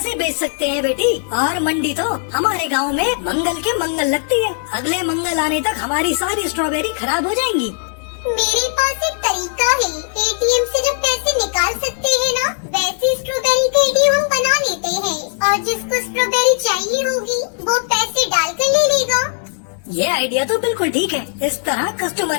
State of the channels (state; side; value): silent; right; digital silence